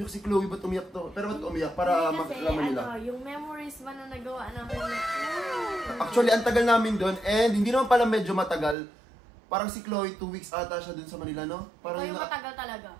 si Chloe, ba't umiyak to? Pero ba't umiyak? Para makalaman nila. Yung memories ba na nagawa namin? Actually, ang tagal namin doon and hindi naman pala medyo matagal. Parang si Chloe, 2 weeks ata siya doon sa Manila, no? Parang Ako yung matagal talaga.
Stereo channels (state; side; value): drops out; left; at 8.8 s